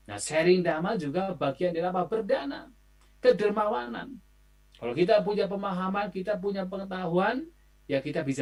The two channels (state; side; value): identical; both; correlation 1.00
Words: Nah, sharing dhamma juga bagian dari apa? Berdana, kedermawanan. Kalau kita punya pemahaman, kita punya pengetahuan, ya kita